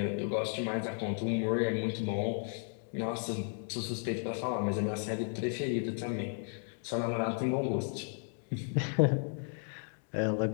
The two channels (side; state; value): right; silent; 55 dB below the other